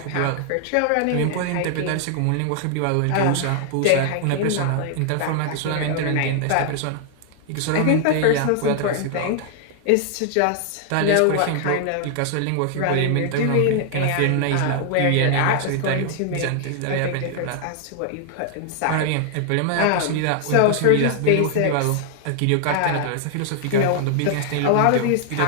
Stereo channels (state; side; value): different; both; correlation 0.00